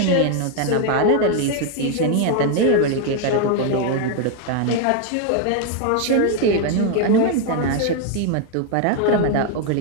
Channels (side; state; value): both; different; correlation 0.01